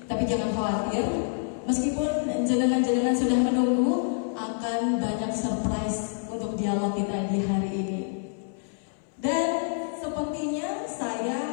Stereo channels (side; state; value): right; silent; 60 dB below the other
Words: Tapi jangan khawatir, meskipun jenengan-jenengan sudah menunggu, akan banyak surprise untuk dialog kita di hari ini. Dan sepertinya